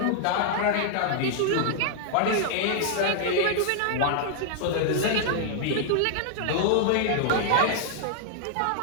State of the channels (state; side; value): different; both; correlation -0.01